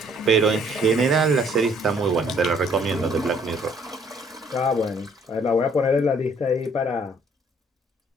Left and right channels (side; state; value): both; normal; correlation 0.61